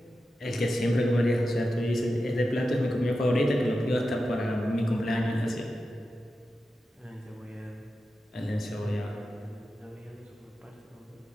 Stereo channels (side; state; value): both; normal; correlation 0.91